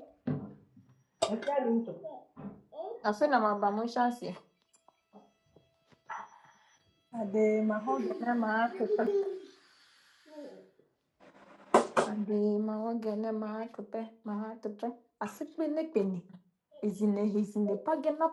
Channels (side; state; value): both; identical; correlation 1.00